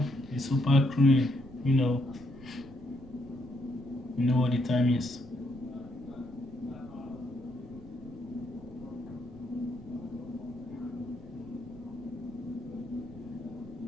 It's super clean. You know what the time is.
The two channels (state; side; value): noise; right; rumble, 19 dB below the sound